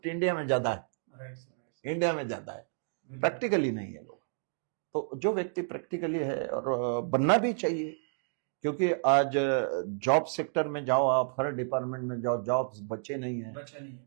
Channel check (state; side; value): silent; left; digital silence